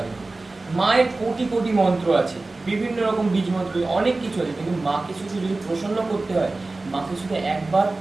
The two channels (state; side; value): quieter; left; 3.2 dB